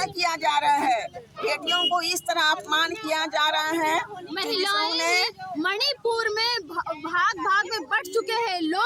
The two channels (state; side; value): identical; both; correlation 1.00